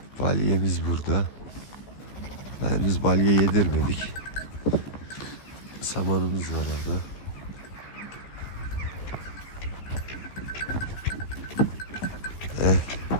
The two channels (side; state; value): right; late; 15 ms